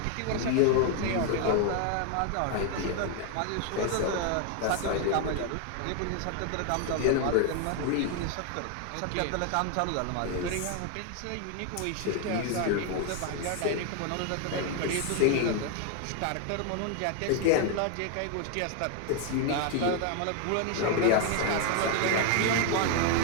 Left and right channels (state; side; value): different; both; correlation 0.01